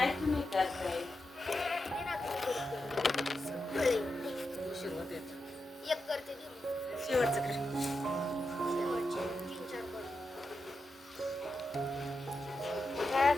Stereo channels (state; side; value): normal; both; correlation 0.88